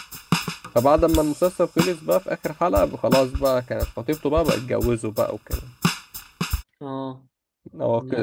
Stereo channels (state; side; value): identical; both; correlation 1.00